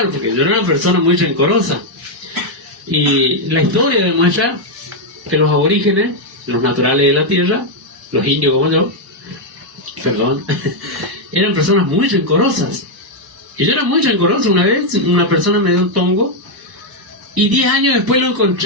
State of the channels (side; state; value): both; normal; correlation 0.00